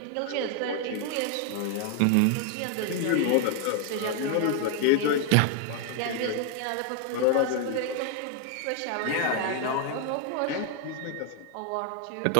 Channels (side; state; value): both; different; correlation 0.00